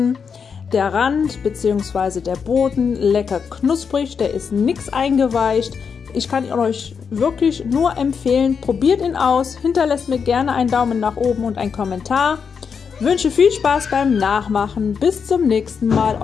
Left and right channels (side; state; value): right; quieter; 6.2 dB